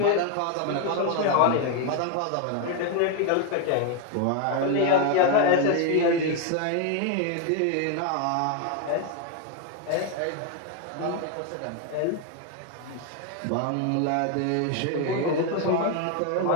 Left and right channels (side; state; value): both; different; correlation 0.01